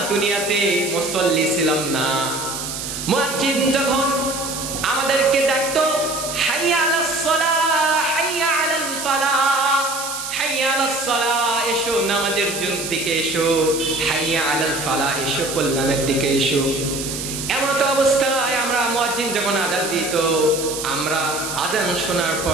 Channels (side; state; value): right; noise; hiss, 6 dB below the sound